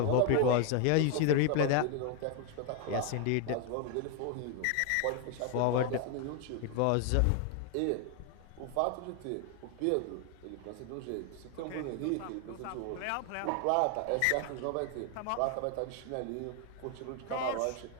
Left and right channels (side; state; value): both; different; correlation 0.01